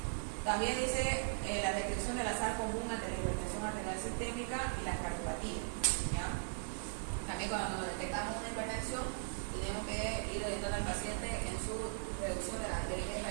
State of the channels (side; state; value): left; silent; digital silence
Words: También dice la descripción del azar común ante la hipertensión arterial sistémica y la cardiopatía, ¿ya? También cuando detectamos una hipertensión, tenemos que ir orientando al paciente en su reducción de la ingesta